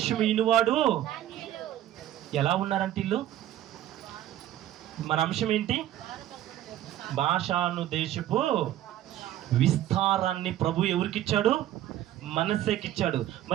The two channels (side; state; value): left; quieter; 12.8 dB